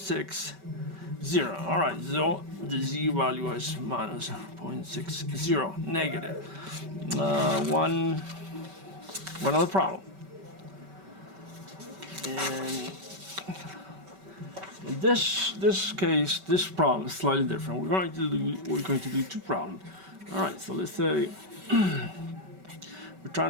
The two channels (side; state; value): left; late; 5.2 ms